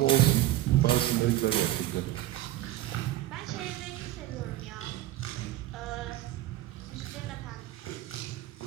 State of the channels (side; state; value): left; quieter; 14.9 dB